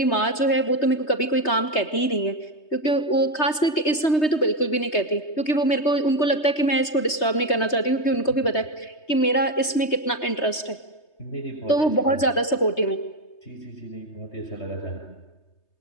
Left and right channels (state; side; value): late; right; 3.2 ms